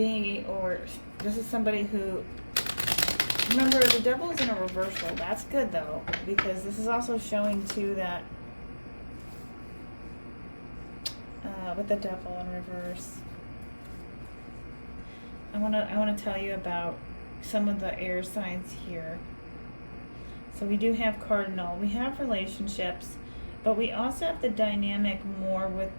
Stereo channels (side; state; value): both; inverted; correlation -1.00